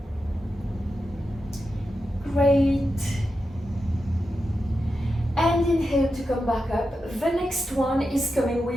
Great. And inhale to come back up. The next one is coming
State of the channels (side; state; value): both; normal; correlation 0.89